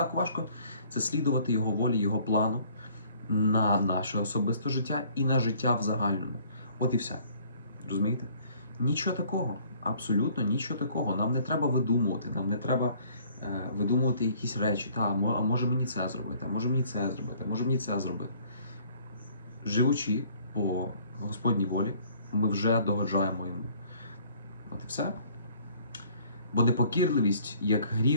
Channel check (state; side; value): inverted; both; correlation -0.57